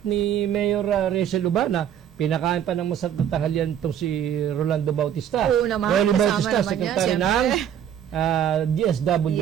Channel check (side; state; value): left; quieter; 9.5 dB